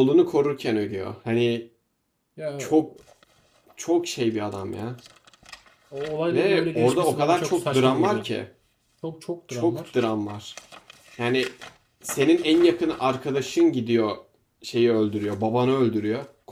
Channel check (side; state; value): both; identical; correlation 1.00